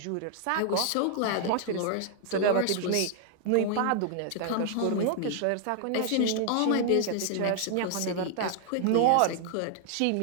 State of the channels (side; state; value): both; different; correlation 0.00